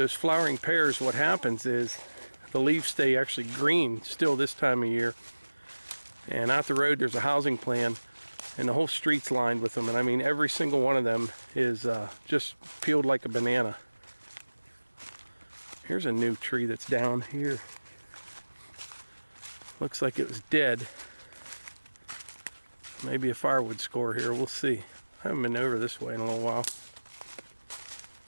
flowering pears, what happens is the leaves stay actually green still this time of year. And out the road there's a housing plan, and the whole street's lined with them. And I mean, every single one of them is just peeled like a banana. Here's a new tree that's down here. Looks like it was dead. Maybe a firewood score here, we'll see. I haven't been over this way in a little while.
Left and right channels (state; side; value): inverted; both; correlation -1.00